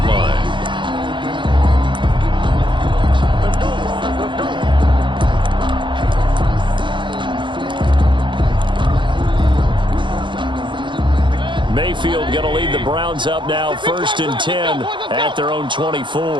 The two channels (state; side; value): late; left; 0.23 ms